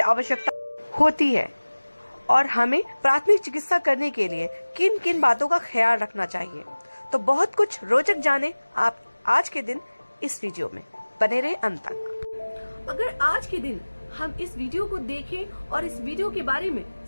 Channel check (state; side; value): inverted; both; correlation -1.00